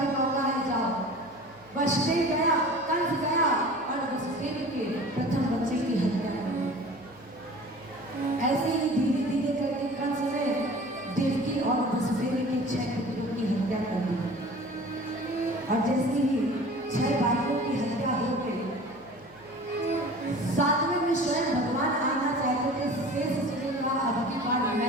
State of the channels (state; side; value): noise; right; hum, 27 dB below the sound